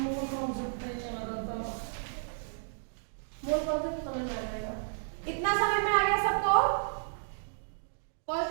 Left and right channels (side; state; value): left; silent; digital silence